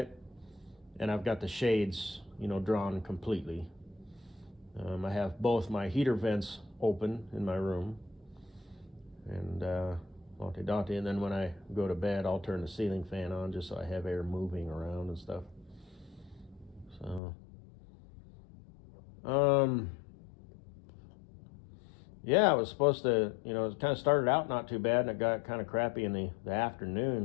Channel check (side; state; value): right; drops out; at 17.2 s